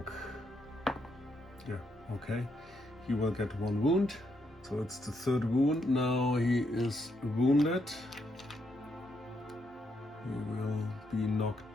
Yeah, okay. He will get 1 wound. So it's the 3rd wound. Now he is wounded. He will be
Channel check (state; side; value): normal; both; correlation 0.78